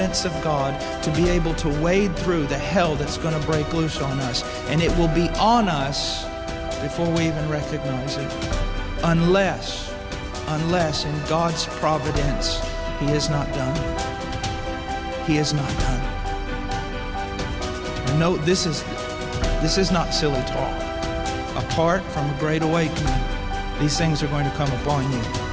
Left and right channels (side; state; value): both; identical; correlation 1.00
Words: of God to be able to wade through the hell that's going to break loose on us. And it will be on us before we even recognize it. Unless in God's providence, He is not done. He is not done. And note, this is not silly talk. Apart from a great awakening, these things are going to come upon you.